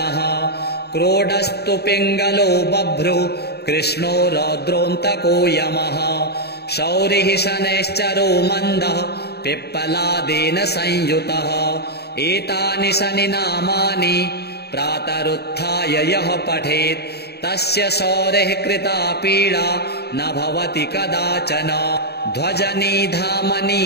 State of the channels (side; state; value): right; late; 0.47 ms